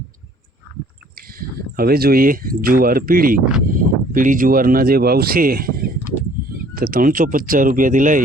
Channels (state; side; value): normal; both; correlation 0.56